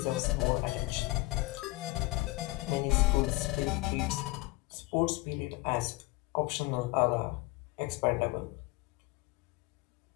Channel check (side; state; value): right; quieter; 21.9 dB